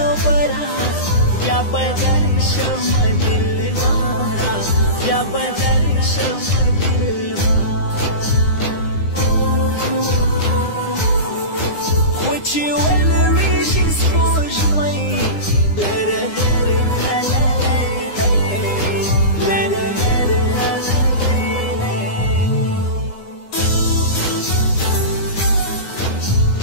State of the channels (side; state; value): right; late; 9.8 ms